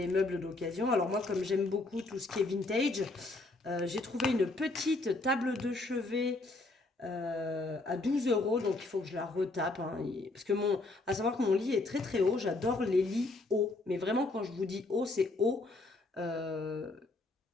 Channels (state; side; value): quieter; right; 3.1 dB